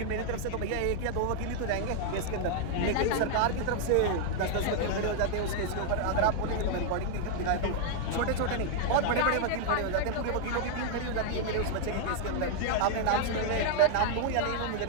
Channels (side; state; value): both; different; correlation 0.00